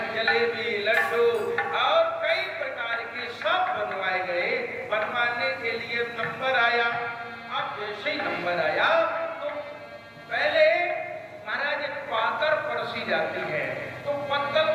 जलेबी, लड्डू और कई प्रकार के सब बनवाए गए। बनवाने के लिए नंबर आया। अब जैसे ही नंबर आया तो पहले महाराज पातर परसी जाती है, तो पत्तल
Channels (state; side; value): identical; both; correlation 1.00